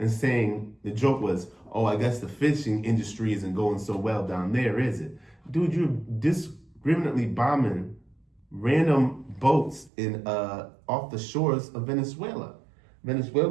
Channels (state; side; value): drops out; left; at 9.9 s